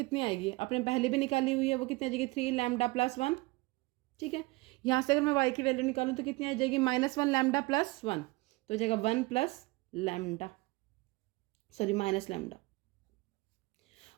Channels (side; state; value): left; quieter; 23.4 dB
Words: आएगी, अपने पहले भी निकाली हुई है, वो कितनी आ जाएगी 3 लैम्डा + 1, ठीक है। यहाँ से अगर मैं वाई की वैल्यू निकालूं तो कितनी आ जाएगी -1 लैम्डा + 1, तो हो जाएगा 1 + लैम्डा, सॉरी -लैम्डा।